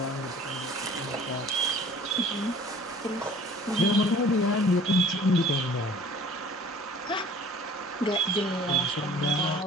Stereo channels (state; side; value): normal; both; correlation 0.48